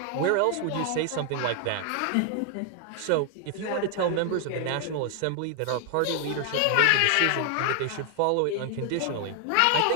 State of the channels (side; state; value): both; different; correlation 0.00